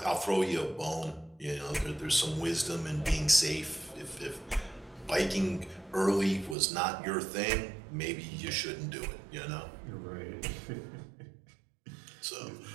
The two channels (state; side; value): drops out; left; at 6.6 s